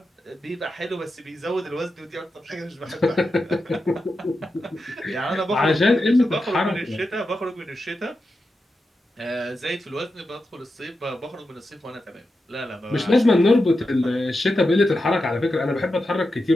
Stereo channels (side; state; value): both; normal; correlation 0.89